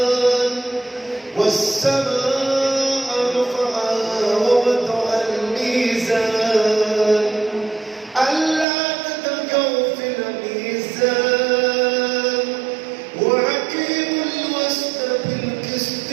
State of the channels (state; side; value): drops out; left; at 8.7 s